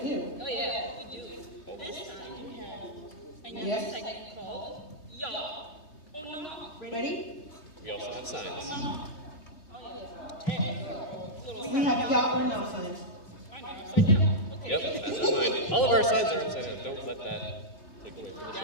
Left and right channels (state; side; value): late; right; 3.2 ms